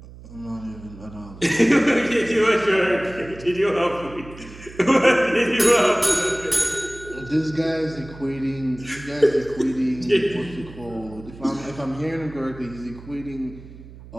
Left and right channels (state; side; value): noise; right; hum, 18 dB below the sound